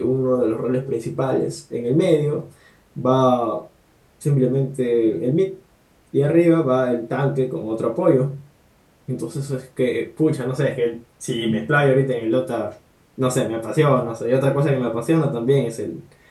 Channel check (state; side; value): identical; both; correlation 1.00